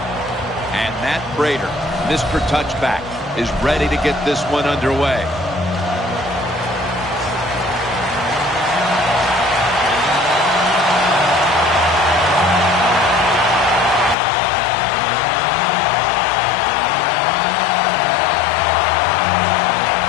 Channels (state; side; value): drops out; right; at 14.2 s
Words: And Matt Prater, Mr. Touchback, is ready to get this one underway.